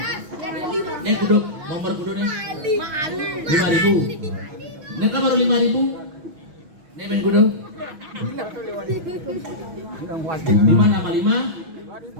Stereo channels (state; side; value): late; left; 6.2 ms